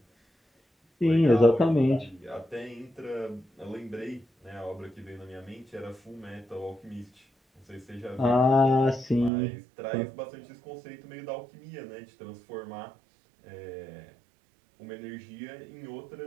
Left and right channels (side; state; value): left; drops out; at 9.3 s